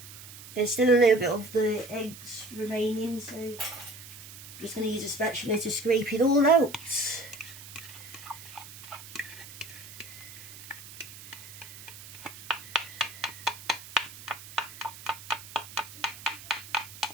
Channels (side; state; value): right; noise; hiss, 15 dB below the sound